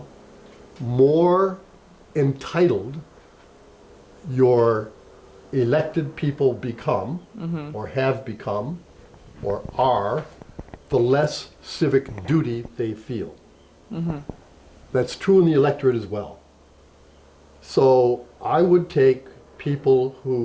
more entitled your elected people become, or have become, or are, the less civic duty they feel. That's true in the electorate as well. So I would take people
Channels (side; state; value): both; identical; correlation 1.00